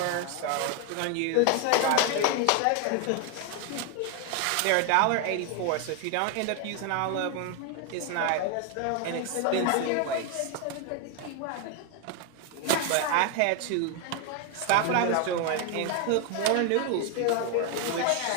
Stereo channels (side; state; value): both; different; correlation 0.01